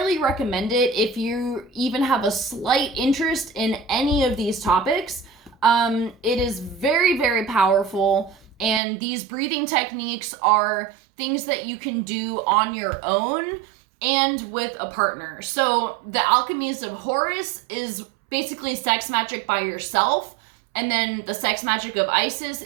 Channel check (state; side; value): drops out; left; at 8.8 s